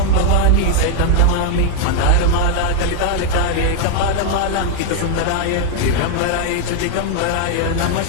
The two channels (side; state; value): both; different; correlation 0.00